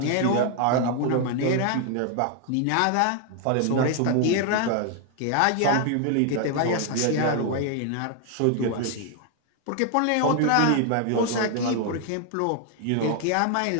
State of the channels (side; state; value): both; different; correlation 0.00